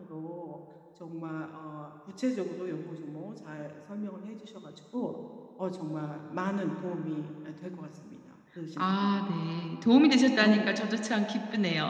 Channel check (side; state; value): both; identical; correlation 1.00